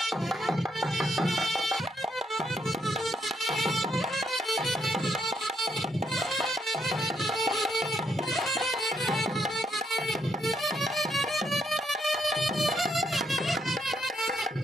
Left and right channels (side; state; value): both; normal; correlation 0.76